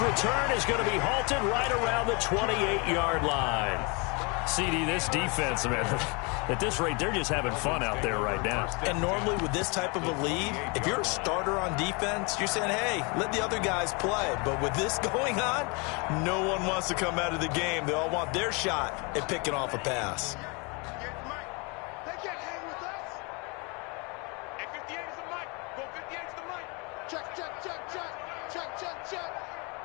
return is going to be halted right around the 28-yard line. CD, this defense, man, at this rate, they're just having fun out there right now. And normally with this type of a lead, if you're a starter on defense, you're saying, hey, let the other guys play. But with this going on, no one wants to come out of the game. They all want their shot at picking off a pass. They can't hang with us. And 58 is the mic. Go 58 is the mic. Check, check, check, check. Check, check, check.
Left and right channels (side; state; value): right; quieter; 30.7 dB